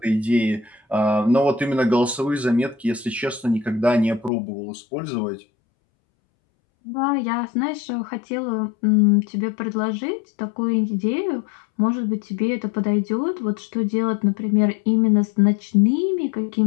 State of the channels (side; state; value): right; drops out; at 4.3 s